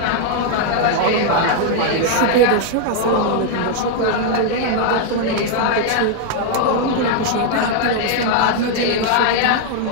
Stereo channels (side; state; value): both; different; correlation 0.00